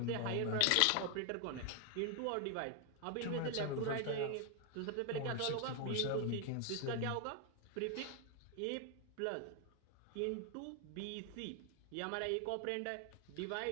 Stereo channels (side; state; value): both; different; correlation 0.01